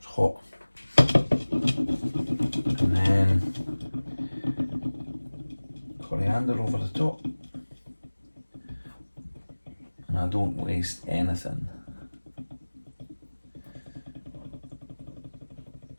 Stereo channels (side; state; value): both; inverted; correlation -1.00